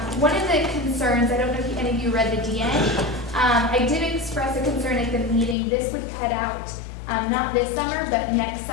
One of the concerns, I don't know if any of you read the DN, I did express a concern at the meeting. This would cut out, not this summer, but next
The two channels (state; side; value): drops out; right; at 5.6 s